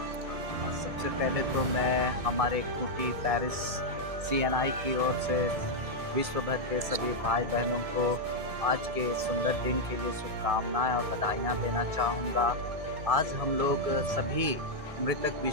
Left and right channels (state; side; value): late; left; 1.6 ms